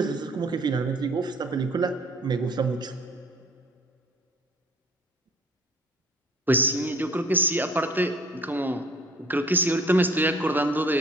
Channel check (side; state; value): both; normal; correlation 0.51